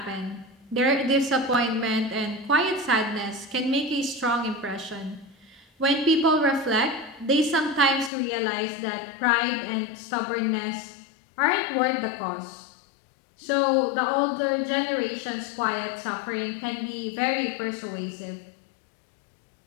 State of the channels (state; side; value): drops out; right; at 8.1 s